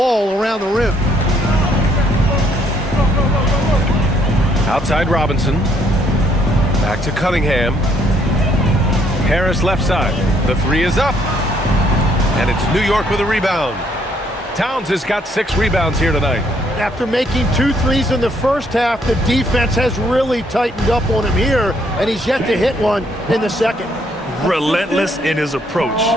around the rim. Outside Robinson. Back to Cunningham. Harris left side. The 3 is up. And it's New York with a rebound. Towns has got 6 rebounds here tonight. After making 2 threes in the first half, the defense has really tightened up on him here, and he's yet to hit one in the second. Relentless in his approach.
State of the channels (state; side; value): normal; both; correlation 0.68